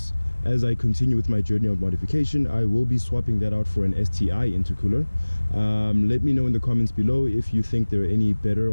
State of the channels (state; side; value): inverted; both; correlation -1.00